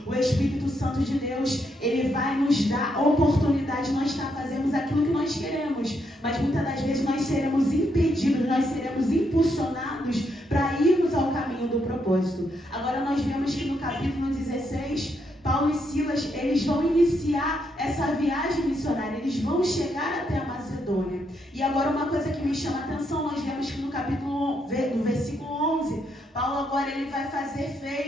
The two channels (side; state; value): both; normal; correlation 0.78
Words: o Espírito Santo de Deus, ele vai nos dar a oportunidade de nós fazermos aquilo que nós queremos, mas muitas das vezes nós seremos impedidos, nós seremos impulsionados para irmos ao caminho do propósito. Agora nós vemos que no capítulo 16, Paulo e Silas, eles vão iniciar essa viagem missionária, eles vão chegar até a Macedônia. E agora uma coisa que me chama a atenção, nós vemos que no versículo 11, Paulo agora ele vai fazer